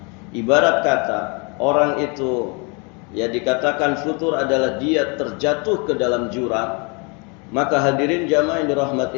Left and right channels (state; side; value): quieter; right; 32.8 dB